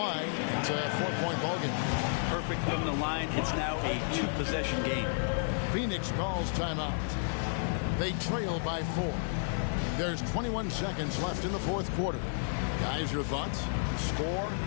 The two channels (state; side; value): silent; right; digital silence